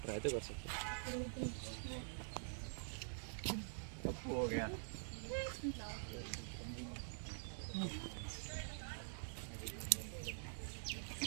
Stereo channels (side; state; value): left; silent; digital silence